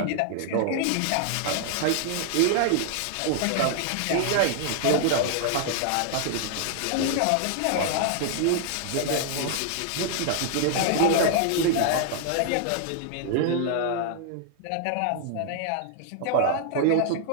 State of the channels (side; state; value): both; different; correlation -0.01